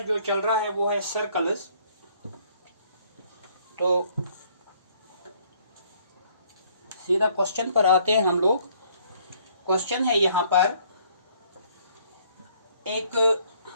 जो चल रहा है वो है सर्कल्स। तो सीधा क्वेश्चन पर आते हैं हम लोग। क्वेश्चन है यहाँ पर एक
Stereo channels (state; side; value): inverted; both; correlation -0.63